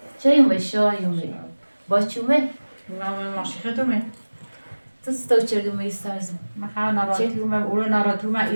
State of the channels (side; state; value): both; inverted; correlation -1.00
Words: چه یومی شایومی با چومه ماشی خدومه تو چردومه استرزم من ناراتومه اولو ناراتومه